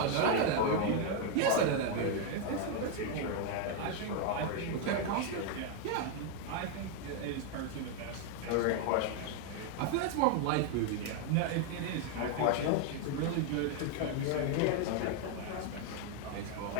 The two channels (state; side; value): different; both; correlation 0.01